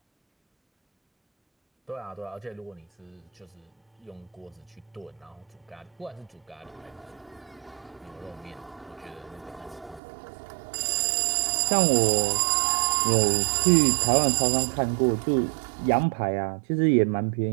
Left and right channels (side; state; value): left; drops out; at 10.0 s